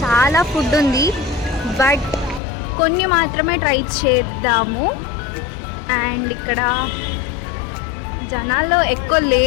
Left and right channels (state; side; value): drops out; right; at 2.4 s